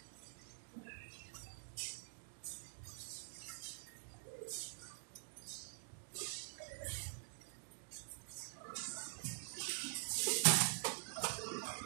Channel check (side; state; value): left; silent; digital silence